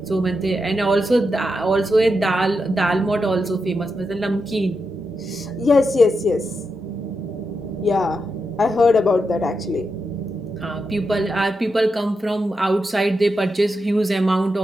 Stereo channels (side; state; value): both; normal; correlation 0.86